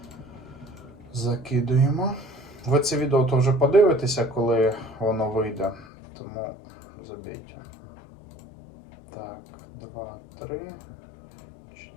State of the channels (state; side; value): drops out; right; at 5.9 s